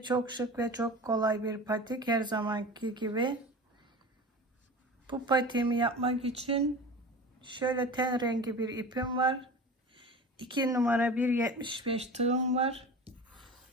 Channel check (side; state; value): both; normal; correlation 0.34